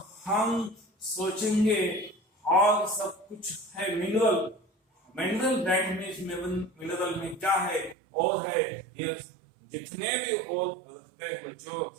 हम सोचेंगे और सब कुछ है मिनरल दैट मींस मिनरल में क्या है और है ये जितने भी और रहते हैं बच्चों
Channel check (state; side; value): drops out; left; at 8.0 s